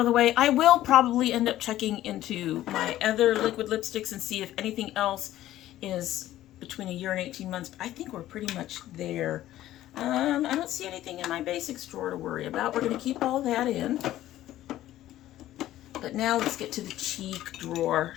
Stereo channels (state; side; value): quieter; right; 14.0 dB